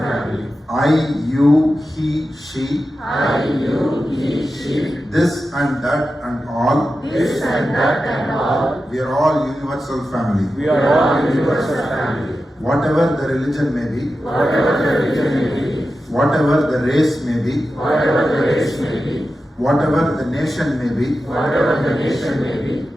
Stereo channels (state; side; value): normal; both; correlation 0.92